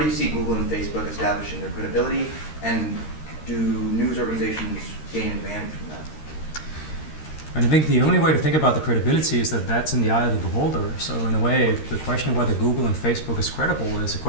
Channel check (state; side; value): late; right; 13 ms